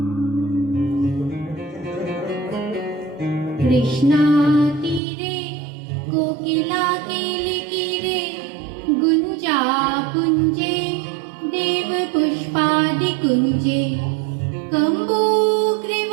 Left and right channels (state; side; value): drops out; left; at 5.0 s